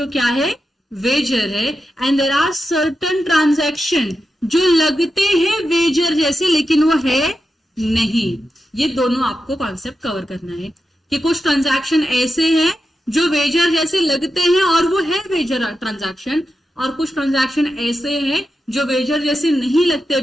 क्या है, वेजर है। And there are certain transaction जो लगते हैं वेजर जैसे लेकिन वो है नहीं। ये दोनों आपको कॉन्सेप्ट कवर करना है कि कुछ ट्रांजैक्शन ऐसे हैं जो वेजर जैसे लगते हैं और वो है वेजर ट्रांजैक्शन, और कुछ ट्रांजैक्शन ऐसे हैं जो वेजर जैसे नहीं लगते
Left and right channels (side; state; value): both; normal; correlation 0.89